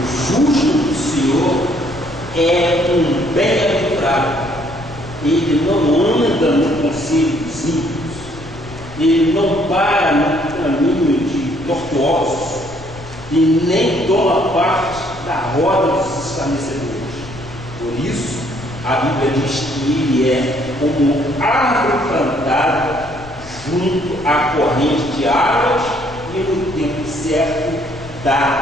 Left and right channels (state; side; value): noise; left; rumble, 18 dB below the sound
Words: justo do Senhor é um bem-aventurado. Ele não anda no conselho dos ímpios, ele não para no caminho de tortuosos e nem toma parte da roda dos escarnecedores. Por isso, a Bíblia diz que ele é como árvore plantada junto à corrente de águas e no tempo certo